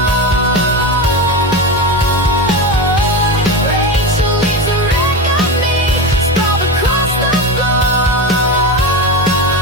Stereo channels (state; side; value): normal; both; correlation 0.20